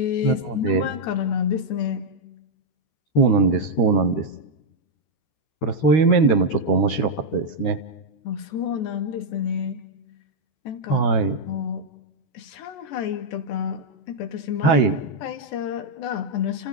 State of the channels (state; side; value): late; right; 14 ms